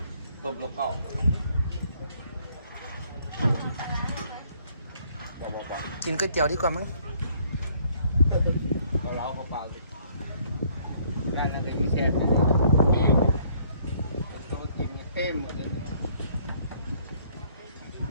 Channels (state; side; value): inverted; both; correlation -0.63